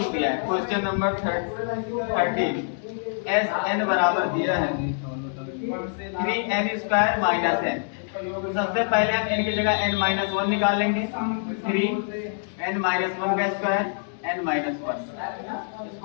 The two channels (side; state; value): right; silent; digital silence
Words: दिया है। Question number 13। एस n बराबर दिया है 3n स्क्वायर माइनस n। सबसे पहले हम n की जगह n माइनस 1 निकाल लेंगे। 3n माइनस 1 का स्क्वायर n माइनस 1।